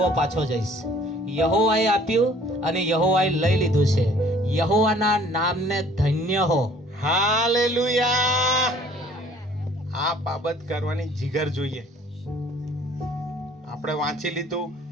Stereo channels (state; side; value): normal; both; correlation 0.54